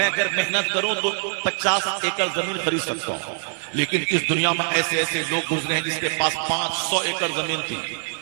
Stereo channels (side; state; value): left; silent; 63 dB below the other